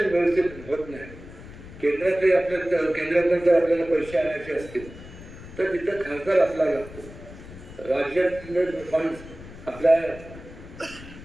व्यवस्थित होत नाही, केंद्रातले केंद्रातून जर आपल्याला पैसे आणायचे असतील तर तिथं खासदार आपल्याला लागतो. राज्यातले फंड आपल्या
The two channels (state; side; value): noise; left; rumble, 16 dB below the sound